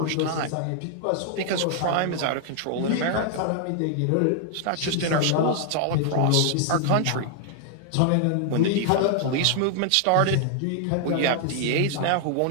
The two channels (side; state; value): both; different; correlation 0.00